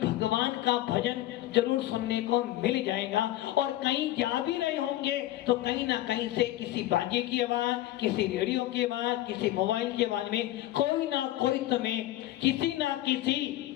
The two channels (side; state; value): right; quieter; 15.1 dB